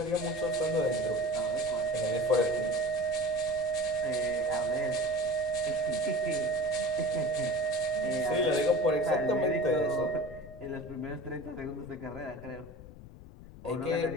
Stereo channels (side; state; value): left; noise; rumble, 17 dB below the sound